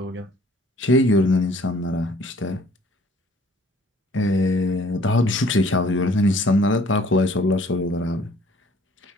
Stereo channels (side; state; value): both; normal; correlation 0.56